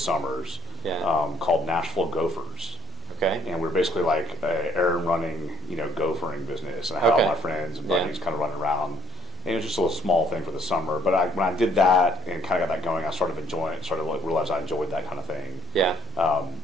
called Nashville Gophers. Okay. And we're basically like a errand running, gophering business. And I had all my friends and buddies kind of running around. And it was just a little small thing for the summer. But when I did that and kind of got that going, I started enjoying it. Started to realize I enjoyed that kind of thing. Yeah.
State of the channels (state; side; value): normal; both; correlation 0.63